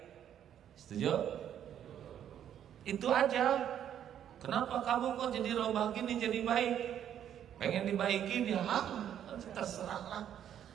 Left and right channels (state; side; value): quieter; left; 9.9 dB